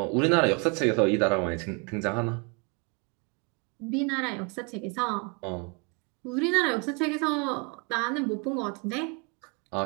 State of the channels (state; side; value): quieter; left; 32.7 dB